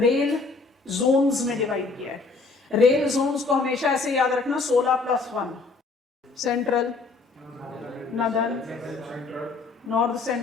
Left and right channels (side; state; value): right; quieter; 4.0 dB